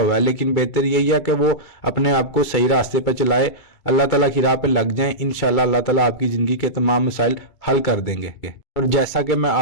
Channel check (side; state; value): right; late; 2.3 ms